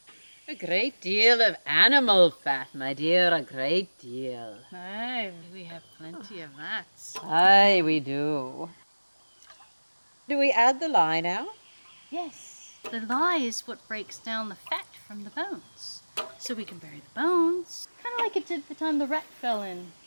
A great deal of animal fat, my dear, a great deal. Aye, we have plenty of that. Aye, we do. Do we add the lye now? Yes, the lye is what breaks down the fat from the bones. So we can bury the bones, kind of like it did the time the rat fell in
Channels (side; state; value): both; inverted; correlation -1.00